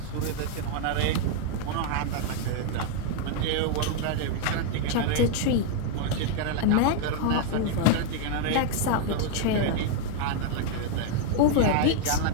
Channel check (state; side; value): different; both; correlation 0.00